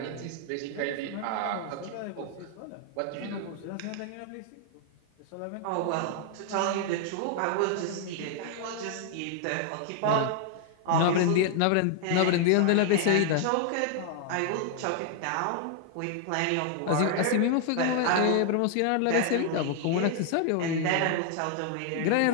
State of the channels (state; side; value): different; both; correlation 0.00